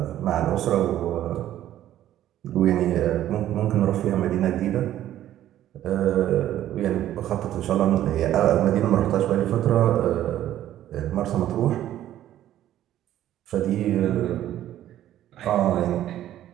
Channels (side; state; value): left; quieter; 12.5 dB